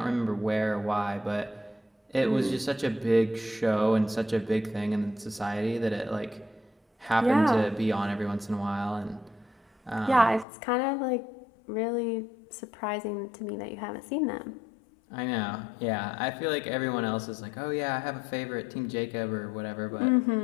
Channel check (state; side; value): drops out; right; at 10.5 s